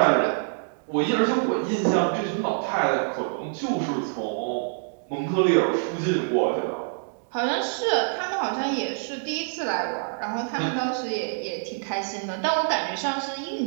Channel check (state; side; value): silent; left; digital silence